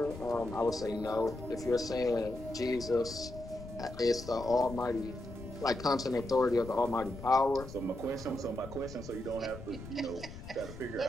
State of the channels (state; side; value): noise; left; rumble, 12 dB below the sound